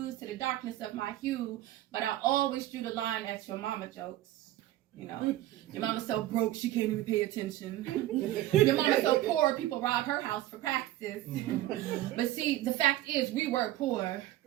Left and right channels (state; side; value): quieter; left; 14.9 dB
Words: to the darkness of my hue, but I always drew the line at your mama jokes. You know, your mama's so broke she can't even pay attention. Your mama's so poor people rob her house for practice. But see, the fact is we were poor.